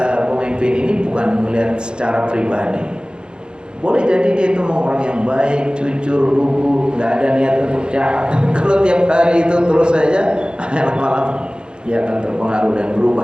pemimpin ini bukan melihat secara pribadi. Boleh jadi dia itu orang yang baik, jujur, lugu, nggak ada niat untuk jahat. Kalau tiap hari itu terus saja, malam dia akan terpengaruh dan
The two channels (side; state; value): left; late; 0.049 ms